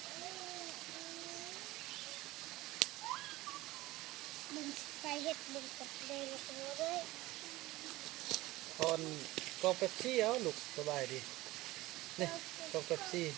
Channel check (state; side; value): quieter; left; 18.7 dB